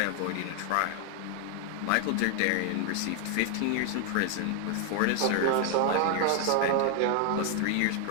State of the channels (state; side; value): different; both; correlation 0.00